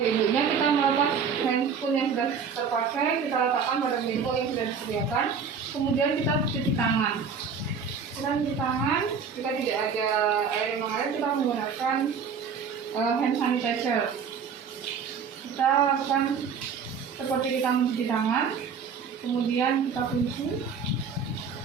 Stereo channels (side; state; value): left; quieter; 6.1 dB